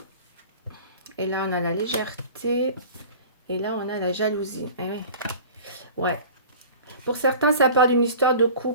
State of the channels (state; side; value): inverted; both; correlation -0.41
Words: Et là, on a la légèreté. Et là, on a la jalousie. Eh oui. Ouais. Pour certains, ça parle d'une histoire de